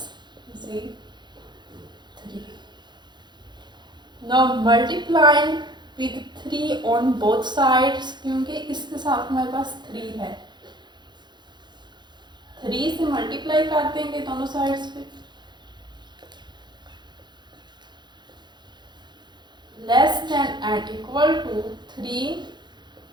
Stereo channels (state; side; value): late; left; 0.21 ms